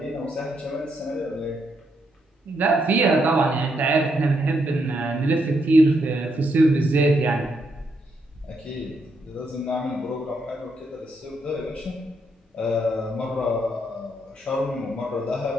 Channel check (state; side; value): normal; both; correlation 0.78